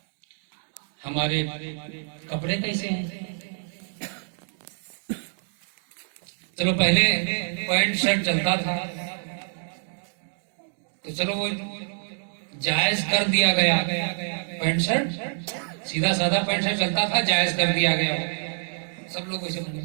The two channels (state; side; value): silent; left; digital silence